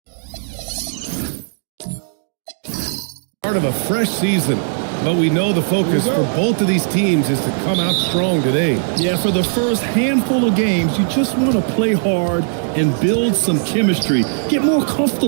Part of a fresh season, but we know the focus for both of these teams is to come out strong today. Yeah, for the first handful of games, you just want to play hard and build some chemistry. Get more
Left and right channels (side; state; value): left; silent; digital silence